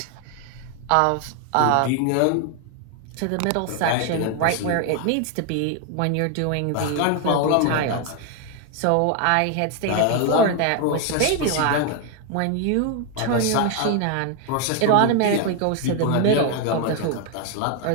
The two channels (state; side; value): different; both; correlation 0.01